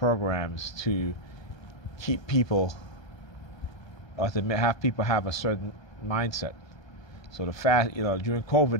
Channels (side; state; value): right; late; 1.3 ms